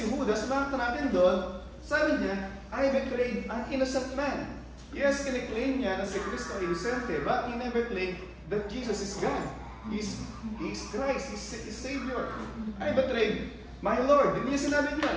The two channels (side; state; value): both; identical; correlation 1.00